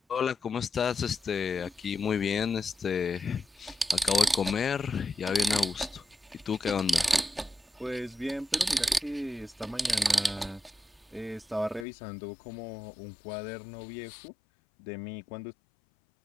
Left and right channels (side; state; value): right; drops out; at 11.9 s